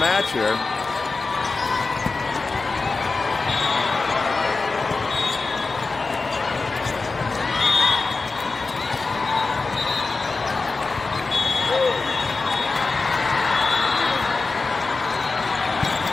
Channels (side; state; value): right; quieter; 3.9 dB